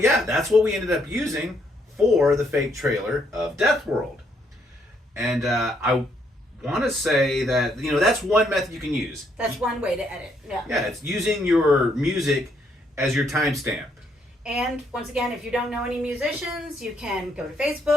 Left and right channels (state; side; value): normal; both; correlation 0.72